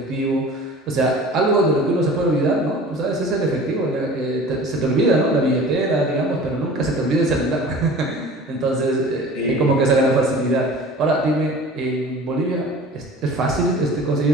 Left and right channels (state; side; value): normal; both; correlation 0.42